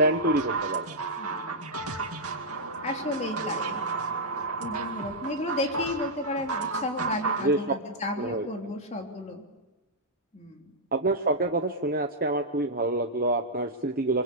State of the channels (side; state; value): both; normal; correlation -0.08